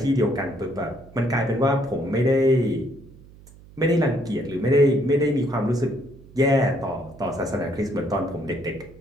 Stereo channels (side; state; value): right; noise; hum, 22 dB below the sound